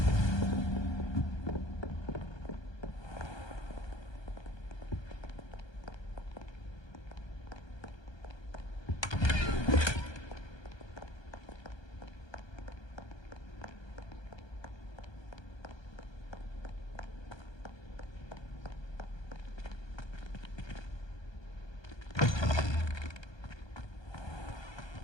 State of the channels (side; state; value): right; late; 1.2 ms